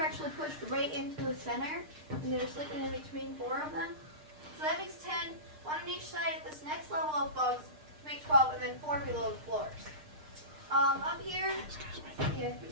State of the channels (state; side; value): late; left; 6.6 ms